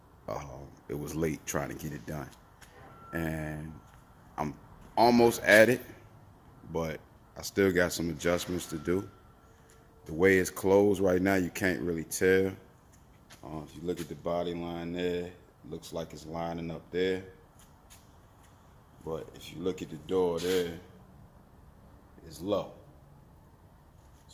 it was late trying to get it done. And I'm almost at it, but I still got some adjustments to do. The way it's closed right now, you can't really tell. If you look at the body line there, it looks like it's lining up there. But if you look at the door there, it's low.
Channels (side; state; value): both; identical; correlation 1.00